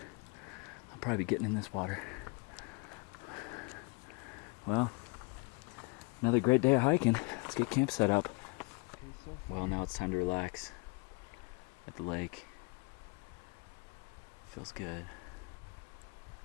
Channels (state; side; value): quieter; right; 29.7 dB